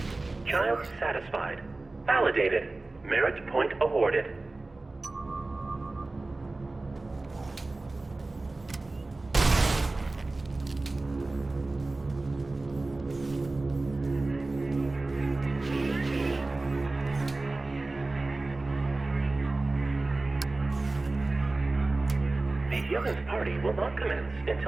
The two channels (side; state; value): left; quieter; 3.2 dB